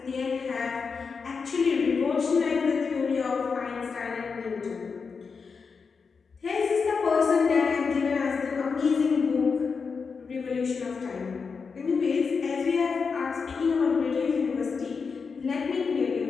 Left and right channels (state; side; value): quieter; right; 5.3 dB